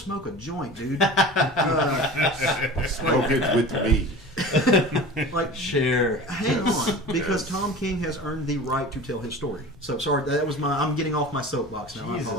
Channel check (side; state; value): both; normal; correlation 0.36